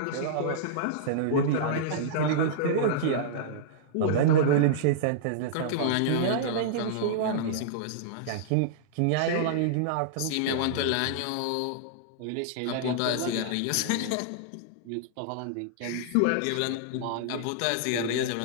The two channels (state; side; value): different; both; correlation -0.02